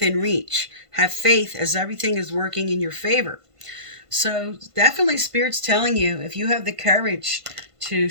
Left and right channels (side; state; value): left; late; 1.5 ms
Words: reach. Have faith as everything is working in your favor. So definitely Spirit's telling you, if you have the courage to